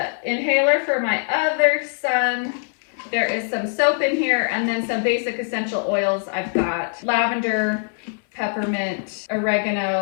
inhaler for my other son. There is some soap in here, and then some basic essential oils. I've got lavender, peppermint,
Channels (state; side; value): silent; right; 64 dB below the other